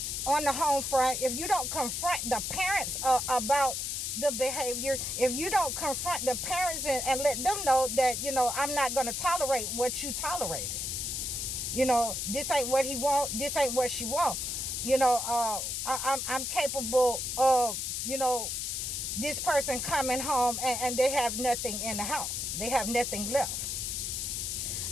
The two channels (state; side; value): noise; left; hiss, 2 dB below the sound